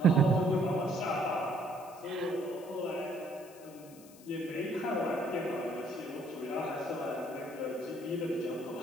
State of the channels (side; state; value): left; noise; hiss, 22 dB below the sound